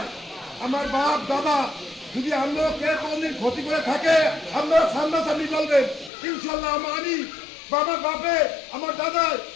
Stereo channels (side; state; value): right; drops out; at 6.1 s